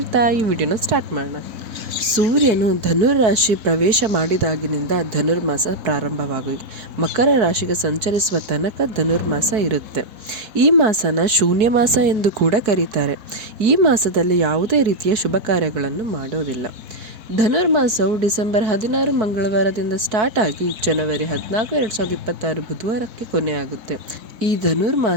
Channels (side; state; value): left; late; 4.6 ms